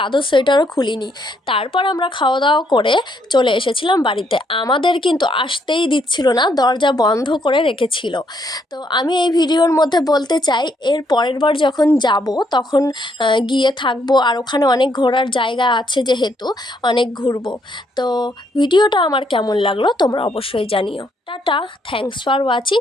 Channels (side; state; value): both; normal; correlation 0.72